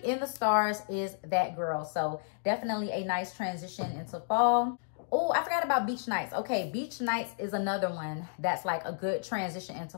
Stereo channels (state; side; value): silent; right; digital silence